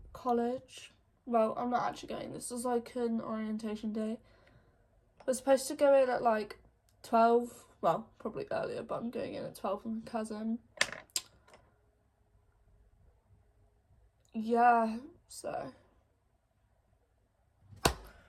college. Well, I'm not actually going. This is like an orientation day. We're supposed to go in at like 12. Well, probably earlier, but I'm going in at 12 with my cousin. Yeah, so.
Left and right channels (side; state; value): both; identical; correlation 1.00